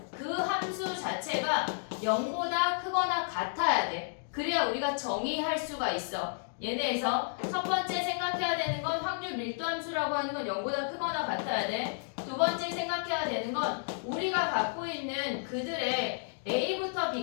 그 함수 자체가 0보다 크거나 같아야 돼. 그래야 우리가 정의할 수가 있어. 얘네에서 첫 번째 생각해야 되는 건 확률 밀도 함수라고 하는 건 0보다 크거나 같아야 돼. 두 번째 생각해야 되는 건 우리가 갖고 있는 그들의 A부터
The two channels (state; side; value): silent; right; digital silence